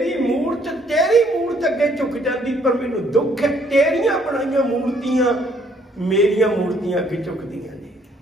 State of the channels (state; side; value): normal; both; correlation 0.65